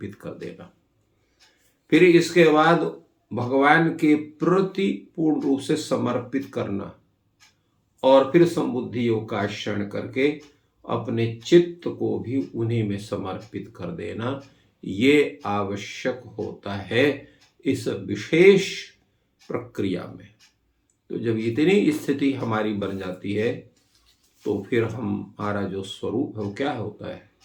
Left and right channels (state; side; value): identical; both; correlation 1.00